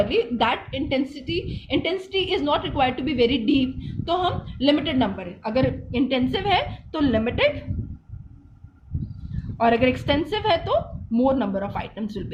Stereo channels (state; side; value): identical; both; correlation 1.00